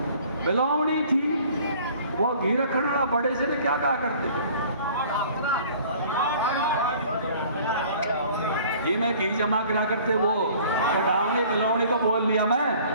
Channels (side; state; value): both; inverted; correlation -0.51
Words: बिलौवनी थी, वो घी रखना बड़े से ने क्या कहा करते थे? घी में घी जमा करा करते, वो कढ़ावनी बिलौवनी तो बोल लिया मैं।